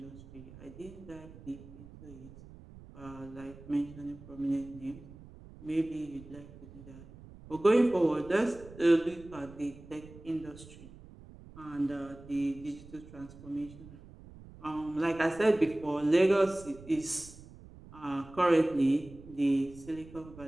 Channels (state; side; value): noise; right; rumble, 18 dB below the sound